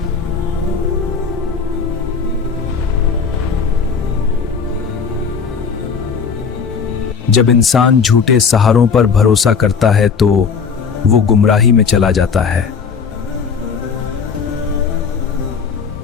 जब इंसान झूठे सहारों पर भरोसा करता है तो वो गुमराही में चला जाता है।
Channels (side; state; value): right; quieter; 5.8 dB